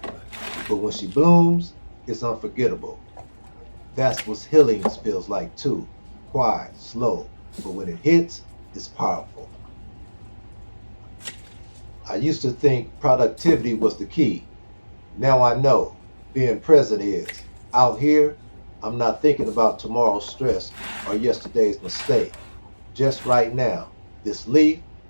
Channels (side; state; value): both; inverted; correlation -1.00